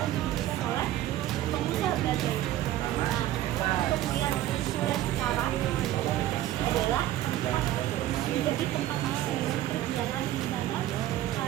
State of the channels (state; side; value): quieter; left; 13.7 dB